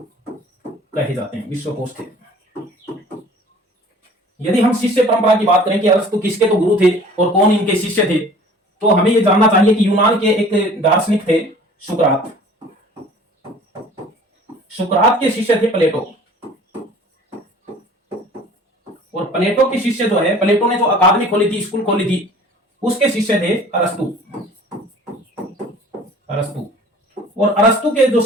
विश्वकोश थे। यदि हम शिष्य परंपरा की बात करें कि अरस्तु किसके तो गुरु थे और कौन इनके शिष्य थे, तो हमें यह जानना चाहिए कि यूनान के एक दार्शनिक थे सुकरात। सुकरात के शिष्य थे प्लेटो, और प्लेटो के शिष्य जो है, प्लेटो ने जो अकादमी खोली थी, स्कूल खोली थी, उसके शिष्य थे अरस्तु। और अरस्तु के जो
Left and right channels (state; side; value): normal; both; correlation 0.48